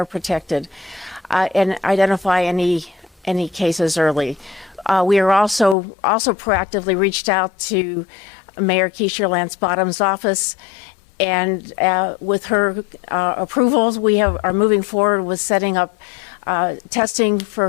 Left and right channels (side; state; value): right; drops out; at 5.8 s